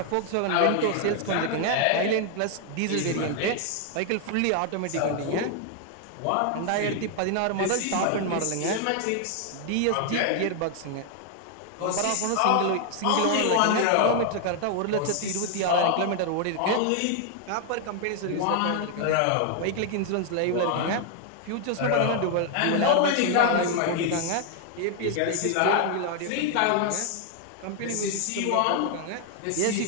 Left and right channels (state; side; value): different; both; correlation 0.00